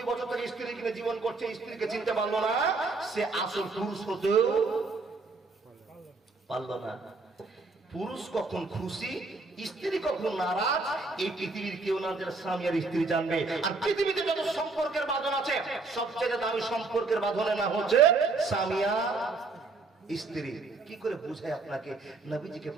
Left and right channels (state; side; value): quieter; left; 3.8 dB